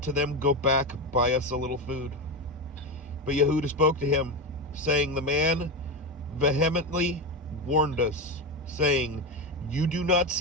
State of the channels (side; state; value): both; normal; correlation 0.15